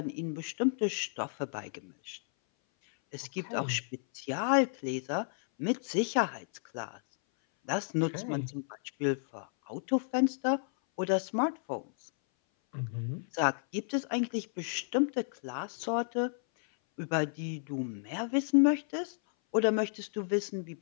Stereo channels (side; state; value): right; silent; 56 dB below the other